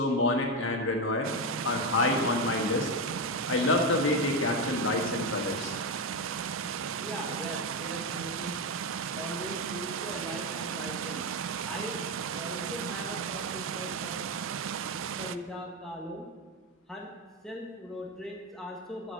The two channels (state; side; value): normal; both; correlation 0.11